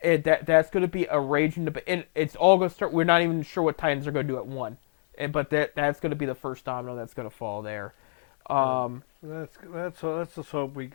That's going to be a raging debate, and it's all going to start. We're not even sure what Titans are going to do at 1, but that's going to be the first domino that's going to fall there. Let's just hope we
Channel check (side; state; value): right; silent; digital silence